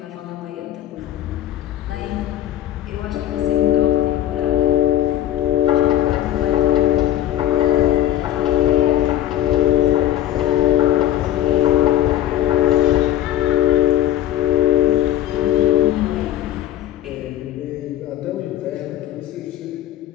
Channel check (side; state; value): right; quieter; 12.6 dB